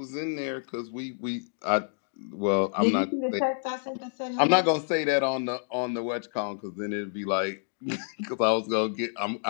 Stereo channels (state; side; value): silent; right; digital silence